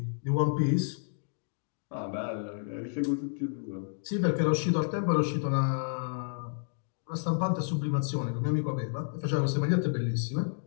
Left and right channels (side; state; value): right; silent; digital silence